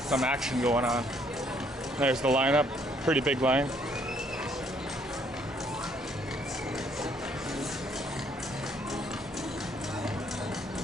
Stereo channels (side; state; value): both; normal; correlation 0.66